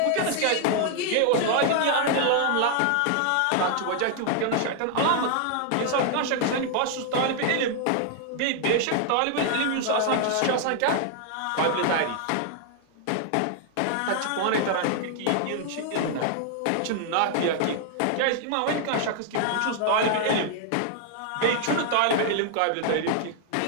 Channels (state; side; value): different; both; correlation 0.00